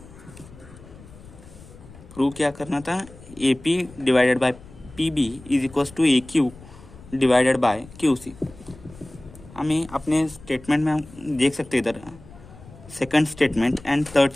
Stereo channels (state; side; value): noise; left; rumble, 20 dB below the sound